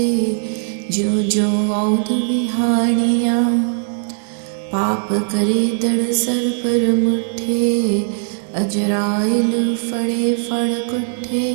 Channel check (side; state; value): left; silent; 58 dB below the other